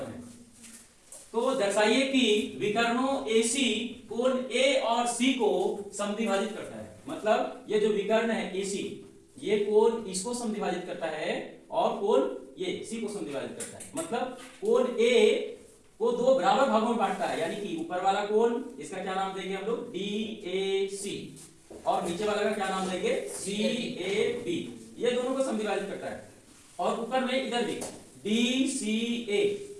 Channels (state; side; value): identical; both; correlation 1.00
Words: हैं। तो दर्शाइए कि विकर्णों AC कोण A और C को समद्विभाजित करता है। मतलब ये जो विकर्ण है AC, ये कोण इसको समद्विभाजित करता है और कोण ये C को समद्विभाजित करता है। मतलब कोण A को दो बराबर भागों में बांटता है, यानी कि ऊपर वाला कोण, इसका क्या नाम देंगे हम लोग, DAC, और नीचे वाला का क्या नाम देंगे, CAB। ये दोनों को समद्विभाजित करता है। और ऊपर में इधर भी DCA